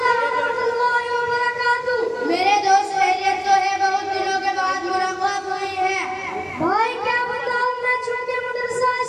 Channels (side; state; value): both; identical; correlation 1.00